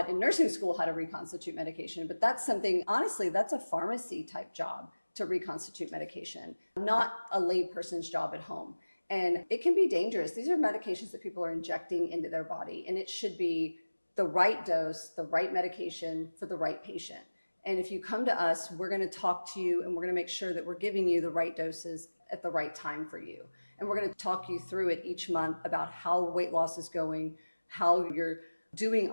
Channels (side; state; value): both; inverted; correlation -1.00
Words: in nursing school how to reconstitute medication, but that's something, honestly, that's a pharmacy type job to reconstitute medication, not a layperson's job at home. And it can be dangerous. These are medications that people are injecting into their body, and it should be the right dose, the right medication for the right patient. And if you come to us, we're going to talk to you and we're going to make sure that we're giving you the right doses at the right time for you. And we're going to talk you through it each month about how weight loss is going, how you're doing